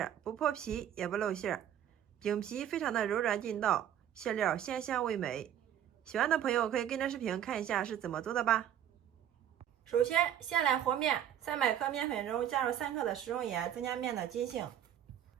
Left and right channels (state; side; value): quieter; left; 10.5 dB